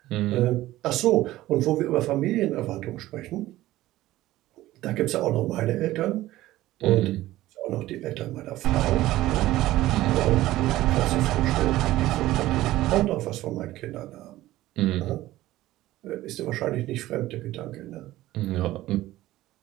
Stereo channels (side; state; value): left; quieter; 16.0 dB